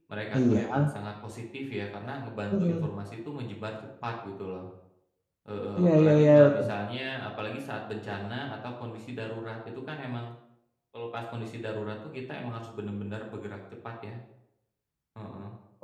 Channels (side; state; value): both; identical; correlation 1.00